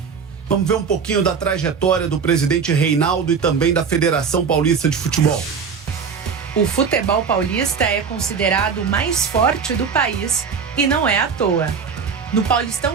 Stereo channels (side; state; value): left; quieter; 6.0 dB